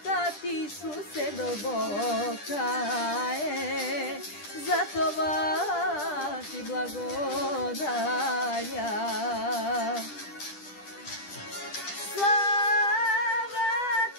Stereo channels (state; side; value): late; right; 10 ms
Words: ти, Исусе, дълбока е, за това ти благодаря.